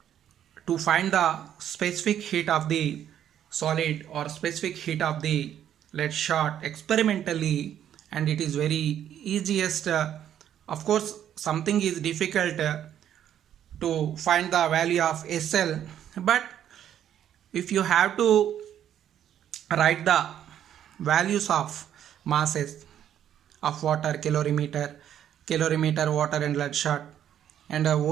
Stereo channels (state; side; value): quieter; left; 10.2 dB